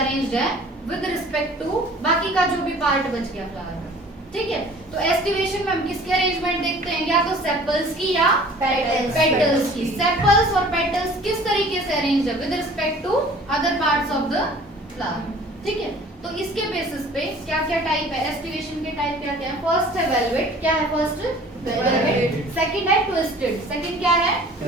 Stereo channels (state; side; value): normal; both; correlation 0.48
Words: है विद रिस्पेक्ट टू बाकी का जो भी पार्ट बच गया फ्लावर का। ठीक है। तो एस्टिवेशन में हम किसके अरेंजमेंट देखते हैं? या तो सेपल्स की या पेटल्स की। सेपल्स और पेटल्स किस तरीके से अरेंज्ड है with respect to other parts of the flower. ठीक है। तो इसके बेसिस पे क्या क्या टाइप है? एस्टिवेशन के टाइप क्या क्या है? फर्स्ट है वेलवेट। क्या है फर्स्ट? वेलवेट। सेकंड है ट्विस्टेड। सेकंड क्या है?